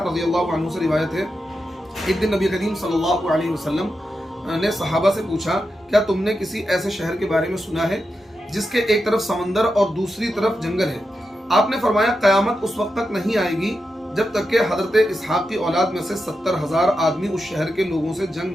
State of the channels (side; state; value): both; normal; correlation 0.88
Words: रज़ियल्लाहु अन्हु से रिवायत है। एक दिन नबी करीम सल्लल्लाहु अलैहि वसल्लम ने सहाबा से पूछा, क्या तुमने किसी ऐसे शहर के बारे में सुना है जिसके एक तरफ समंदर और दूसरी तरफ जंगल है? आपने फरमाया, कयामत उस वक्त तक नहीं आएगी जब तक कि हजरत इसहाक की औलाद में से 70,000 आदमी उस शहर के लोगों से